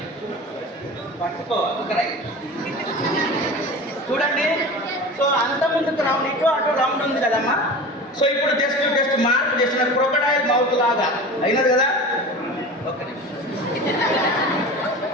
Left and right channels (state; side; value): normal; both; correlation 0.34